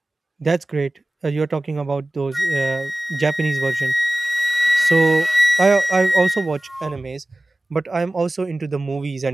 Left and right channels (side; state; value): both; normal; correlation 0.97